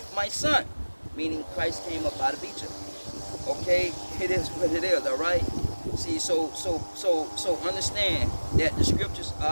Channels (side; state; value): both; inverted; correlation -1.00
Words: my son. Meaning Christ came up out of Egypt. Okay, it is what it is. All right. See, so understand that the scriptures